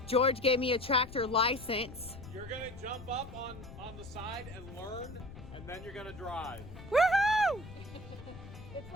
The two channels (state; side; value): noise; left; rumble, 14 dB below the sound